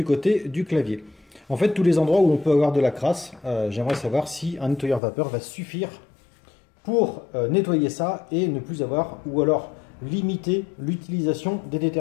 côté du clavier. En fait, tous les endroits où on peut avoir de la crasse, j'aimerais savoir si un nettoyeur vapeur va suffire pour nettoyer ça et ne plus avoir, ou alors limiter l'utilisation des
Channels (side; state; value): right; drops out; at 5.0 s